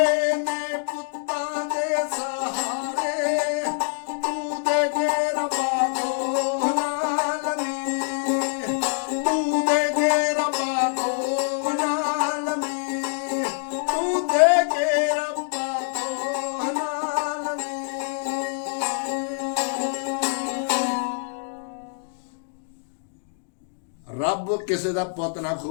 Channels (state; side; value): silent; right; digital silence